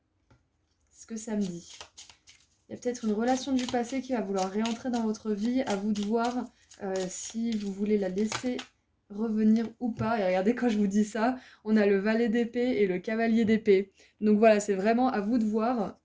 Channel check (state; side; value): identical; both; correlation 1.00